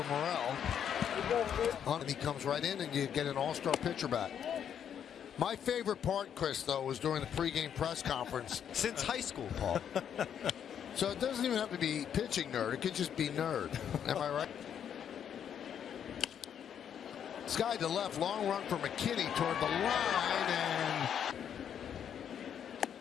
Morel. And he comes right in, and you get an all-star pitcher back. My favorite part, Chris, though, was during the pregame press conference. Since high school, Paul. So it doesn't even have to be pitching nerd. It could just be nerd. Am I right? Sky to left, long run for McKinney toward the line, and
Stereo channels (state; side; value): quieter; right; 8.7 dB